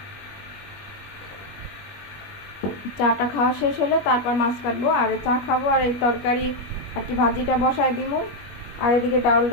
চাটা খাওয়া শেষ হলে তারপর মাছ কাটবো, আর চা খাবো, আর এই তরকারি আর কি ভাজিটা বসাই দিব। আর এদিকে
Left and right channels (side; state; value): right; late; 21 ms